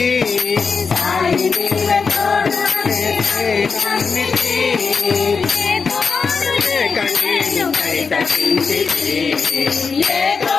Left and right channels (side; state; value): right; quieter; 5.2 dB